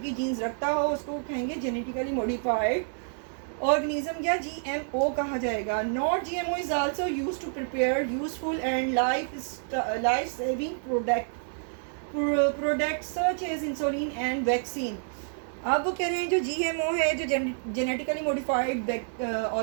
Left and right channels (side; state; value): left; silent; digital silence